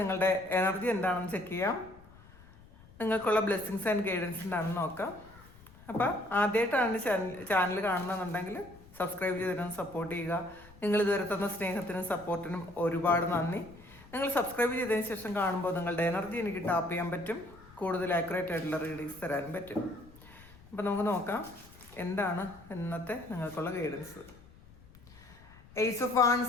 എനർജി എന്താണെന്ന് ചെക്ക് ചെയ്യാം. നിങ്ങൾക്കുള്ള ബ്ലെസ്സിങ്സ് ആൻഡ് ഗൈഡൻസ് എന്താണെന്ന് നോക്കാം. അപ്പോൾ ആദ്യമായിട്ടാണ് ചാനൽ കാണുന്നതെന്നുണ്ടെങ്കിൽ സബ്സ്ക്രൈബ് ചെയ്തിരുന്ന് സപ്പോർട്ട് ചെയ്യുക. നിങ്ങൾ ഇതുവരെ തന്ന സ്നേഹത്തിനും സപ്പോർട്ടിനും ഒരുപാട് നന്ദി. നിങ്ങൾ സബ്സ്ക്രൈബ് ചെയ്തതിന് ശേഷം കാണുമ്പോൾ നിങ്ങളുടെ എനർജി എനിക്ക് ടാപ്പ് ചെയ്യാൻ പറ്റും, കൂടുതൽ ആക്യുറേറ്റ് ആയിട്ടുള്ള റീഡിങ്സ് തരാനും പറ്റും. അപ്പം നമുക്ക് നോക്കാം എന്താണ് ഇന്നത്തെ നിങ്ങൾക്കുള്ള ഗൈഡൻസ്. എയ്സ് ഓഫ്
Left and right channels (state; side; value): noise; left; rumble, 23 dB below the sound